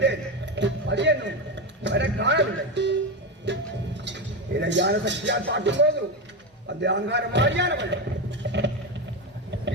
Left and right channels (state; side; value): normal; both; correlation 0.14